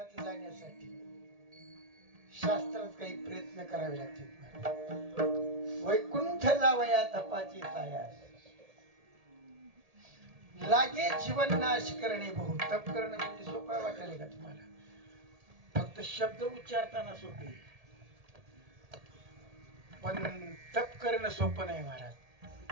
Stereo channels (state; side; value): late; left; 1.8 ms